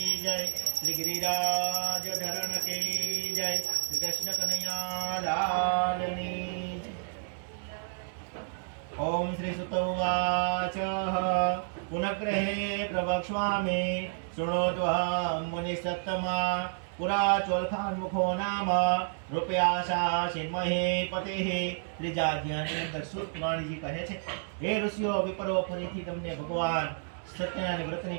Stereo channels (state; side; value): silent; left; digital silence